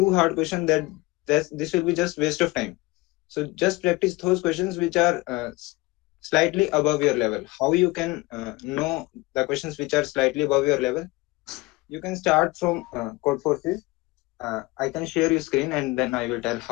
hard question, this will be just waste of time. So just practice those questions which are slightly above your level. How you can know the questions which are slightly above your level? You can start from code forces. I can share your screen, and then I will tell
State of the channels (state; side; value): quieter; right; 22.0 dB